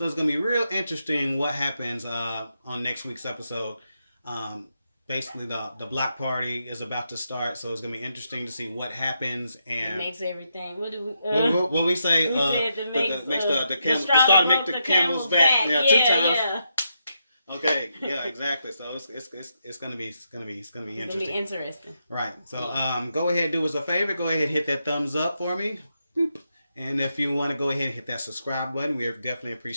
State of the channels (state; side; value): inverted; both; correlation -0.82